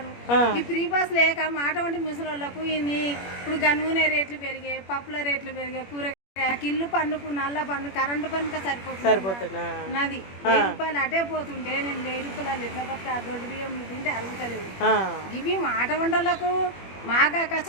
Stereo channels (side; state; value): right; late; 21 ms